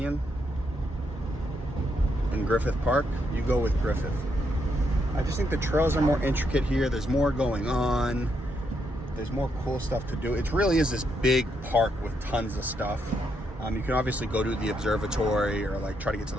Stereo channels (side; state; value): both; normal; correlation 0.78